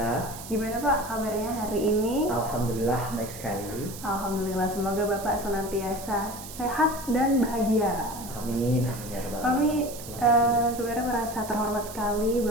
Gimana Pak kabarnya hari ini? Alhamdulillah baik sekali. Alhamdulillah, semoga Bapak senantiasa sehat dan bahagia. Amin. Amin ya rabbal Kami alamin. sebenarnya merasa terhormat sekali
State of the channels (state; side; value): noise; right; hiss, 13 dB below the sound